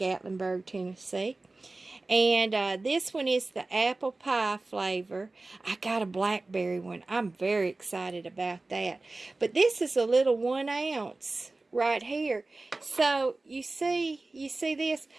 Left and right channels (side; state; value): left; quieter; 3.2 dB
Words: Tennessee. And this one is the apple pie flavor. I got a blackberry one. I'm very excited about that. But this is a little 1 ounce right here. So you see this?